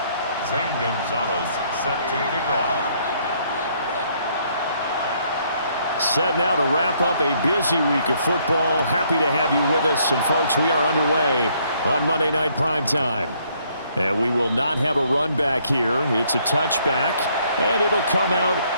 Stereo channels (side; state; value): both; inverted; correlation -0.67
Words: Zane Gonzalez set to kick off. Set now to wrap up a busy week of football. Happy to have you with us. And, folks, we are underway on Monday Night Primetime. And we will not have a run back here. It's a touchback, and it'll come out